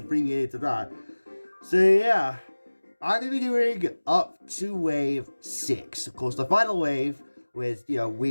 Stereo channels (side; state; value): both; inverted; correlation -1.00